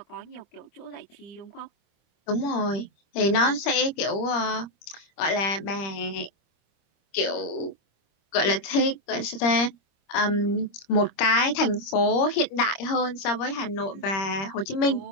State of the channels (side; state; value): right; late; 25 ms